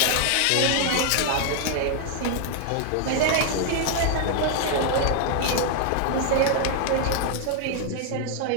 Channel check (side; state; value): both; different; correlation 0.00